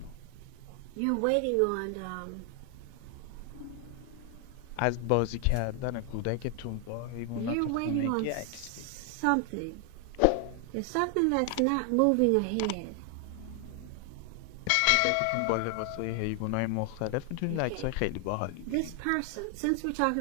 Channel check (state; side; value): different; both; correlation 0.00